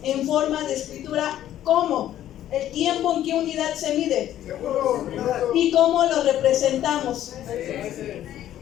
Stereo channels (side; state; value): right; quieter; 12.1 dB